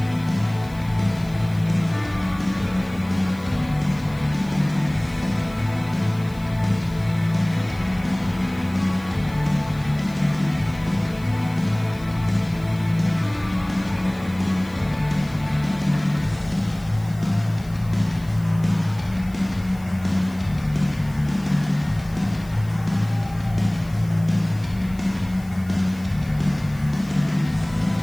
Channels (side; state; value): left; noise; hiss, 24 dB below the sound